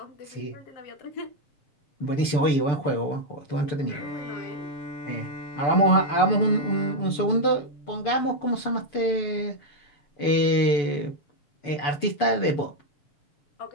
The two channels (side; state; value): right; late; 6.9 ms